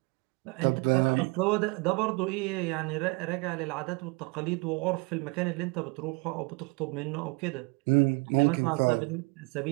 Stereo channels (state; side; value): quieter; left; 29.4 dB